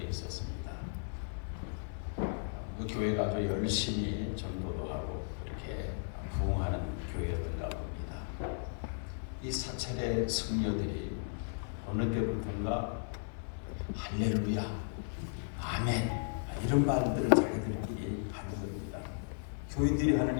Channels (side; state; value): right; silent; digital silence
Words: 있었습니다. 그 교회가 아주 열심히 전도도 하고 이렇게 부흥하는 교회였던가 봅니다. 이 사찰의 성녀들이 어느 때부터인가 할렐루야, 아멘 이런 말들을 자기들끼리 하는 겁니다. 교인들이